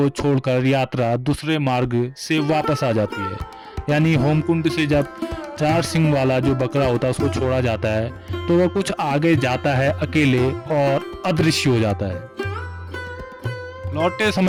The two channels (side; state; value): both; identical; correlation 1.00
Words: छोड़कर यात्रा दूसरे मार्ग से वापस आ जाती है। यानी होमकुंड से जब 4 सिंग वाला जो बकरा होता है उसको छोड़ा जाता है तो वह कुछ आगे जाता है अकेले और अदृश्य हो जाता है। लौटते